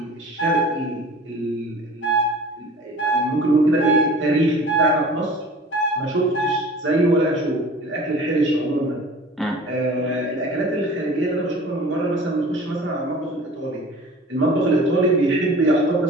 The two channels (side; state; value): both; normal; correlation 0.43